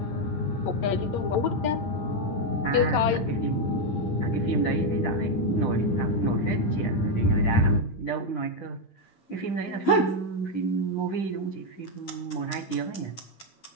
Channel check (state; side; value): late; right; 9.9 ms